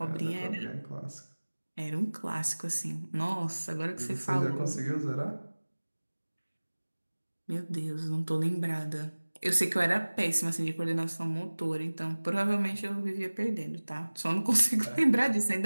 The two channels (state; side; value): inverted; both; correlation -1.00